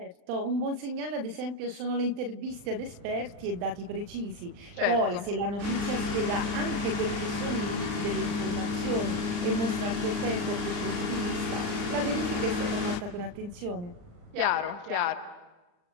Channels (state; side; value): late; left; 39 ms